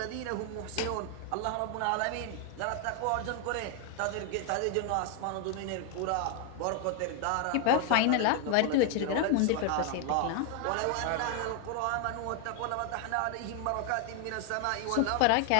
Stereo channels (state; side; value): different; both; correlation 0.00